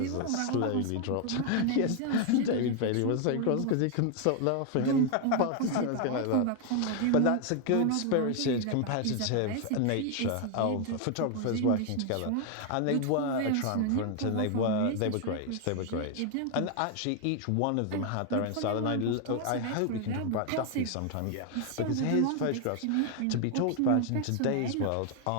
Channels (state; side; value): different; both; correlation 0.00